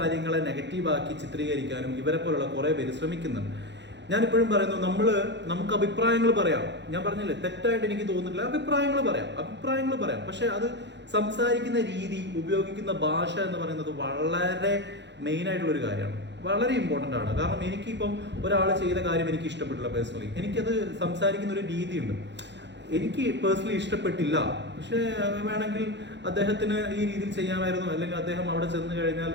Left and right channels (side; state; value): left; late; 0.52 ms